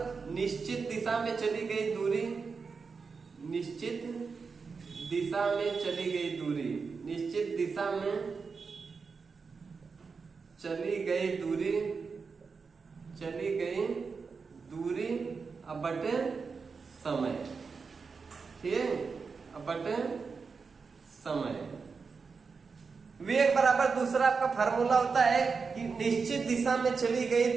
निश्चित दिशा में चली गई दूरी, निश्चित दिशा में चली गई दूरी, निश्चित दिशा में चली गई दूरी अब बटे समय। ठीक, अब बटे समय। वेग बराबर दूसरा आपका फार्मूला होता है कि निश्चित दिशा में चली गई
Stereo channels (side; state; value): left; quieter; 5.0 dB